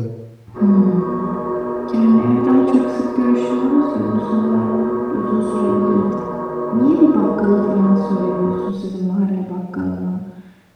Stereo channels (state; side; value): identical; both; correlation 1.00